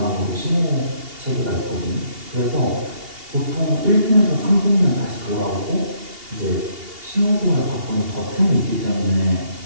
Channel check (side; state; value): left; late; 2.8 ms